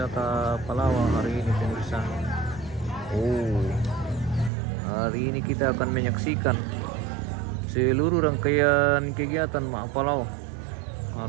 Palawak hari ini pemirsa. Hari ini kita akan menyaksikan seluruh rangkaian kegiatan Mak Palau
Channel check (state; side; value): drops out; left; at 4.5 s